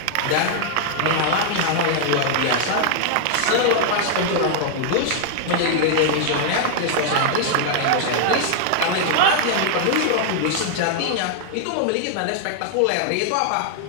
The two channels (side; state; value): both; different; correlation -0.01